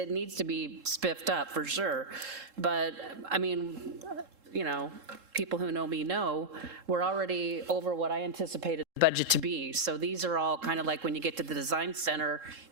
to be spiffed up for sure. But, I mean, people who know me know, we're already over what I anticipated the budget to be. So these are all kind of like when you get to the design center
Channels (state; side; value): late; left; 3.7 ms